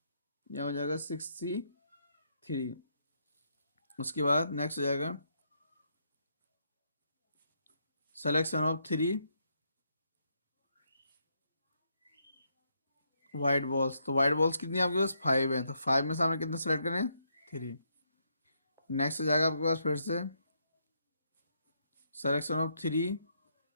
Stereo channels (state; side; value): inverted; both; correlation -0.77